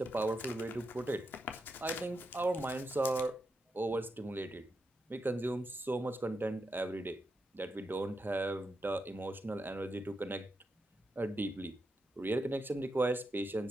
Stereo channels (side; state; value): both; normal; correlation 0.85